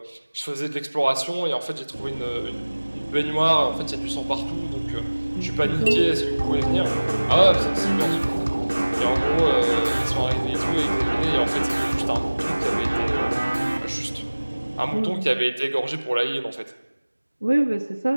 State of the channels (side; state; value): both; inverted; correlation -1.00